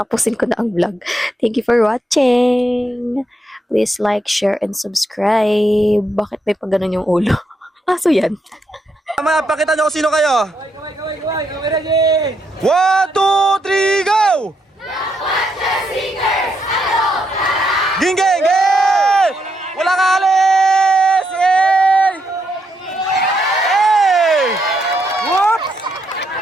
ko na ang vlog. Thank you for watching. Please like, share, and subscribe. Bakit may pag ganun yung ulo? Aso yan. Tama, pakita nyo kung sino kayo. Kaway, ready! 1, 2, 3, go! Ging, ging, ging! Wala ka alis! Hey! Hey! Whoop!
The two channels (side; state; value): both; normal; correlation 0.79